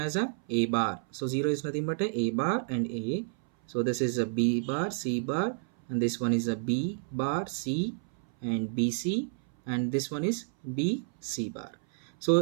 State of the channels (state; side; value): silent; left; 58 dB below the other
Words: a bar. So 0 is nothing but a bar and A. So this is a B bar, C bar, and this one is a B bar, C and BC, and this one is B, C bar. So